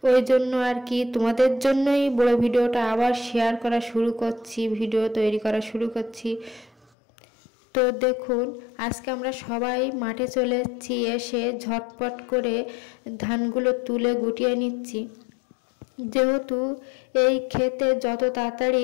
ওই জন্য আর কি তোমাদের জন্যই বড় ভিডিওটা আবার শেয়ার করা শুরু করছি, ভিডিও তৈরি করা শুরু করছি। তো দেখুন, আজকে আমরা সবাই মাঠে চলে এসেছি, এসে ঝটপট করে ধানগুলো তুলে গুটিয়ে নিচ্ছি। যেহেতু এই ক্ষেতে যত তাড়াতাড়ি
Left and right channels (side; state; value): right; drops out; at 6.9 s